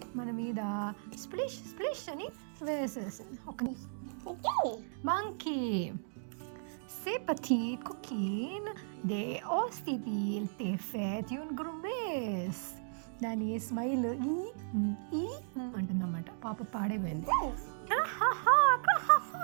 మన మీద స్ప్లిష్ స్ప్లిష్ అని వేసేసింది. ఒక monkey C'est petit coquine de ostitil te fet un grumes. దాని స్మైల్ ఈ అంటుందన్నమాట. పాప పాడైపోయింది.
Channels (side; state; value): left; silent; digital silence